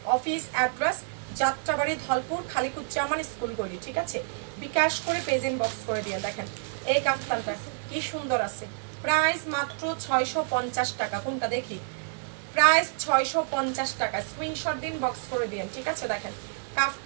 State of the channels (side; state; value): left; silent; 59 dB below the other